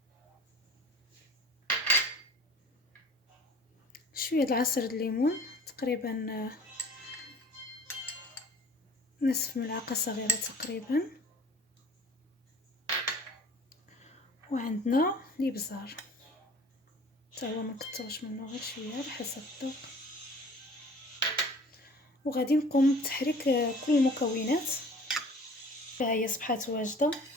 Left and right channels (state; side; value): normal; both; correlation 0.47